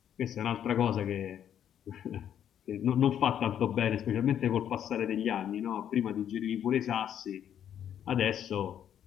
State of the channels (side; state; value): right; quieter; 9.7 dB